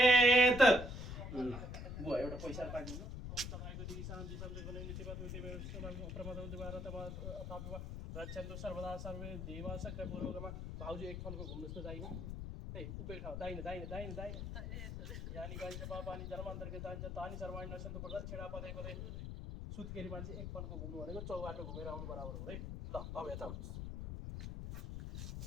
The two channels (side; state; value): left; noise; rumble, 6 dB below the sound